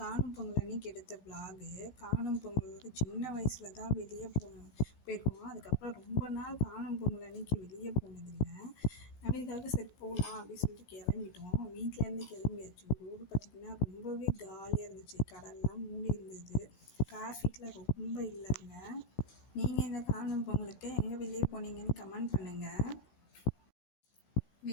காணும் பொங்கல் அன்னைக்கு எடுத்த விலாகு. காணும் பொங்கல் சின்ன வயசில் தான் வெளியே போயிருக்கோம். அதுக்கப்புறம் ரொம்ப நாள் காணும் பொங்கல் அன்னைக்கு வெளியே போனதில்லை. நவீனுக்காக சரி போகலாம் அப்படின்னு சொல்லிட்டு கிளம்பிட்டோம். வீட்டிலேருந்து கிளம்பியாச்சு. ரோடு பார்த்திங்கன்னா ரொம்பவே காலியாக இருந்துச்சு. கடல்லாம் மூடி இருந்தது. டிராஃபிக்கில் ரொம்ப இல்லைங்க. நீங்கள் இந்த காணும் பொங்கலுக்கு எங்கே வெளியே போனீங்கன்னு கமெண்ட் பண்ணுங்கள்.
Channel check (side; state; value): right; late; 16 ms